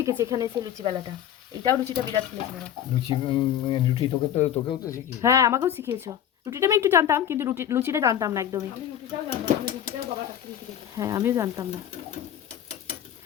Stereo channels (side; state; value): right; quieter; 10.2 dB